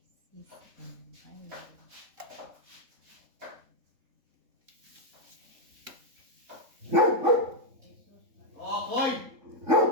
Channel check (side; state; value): left; late; 3.6 ms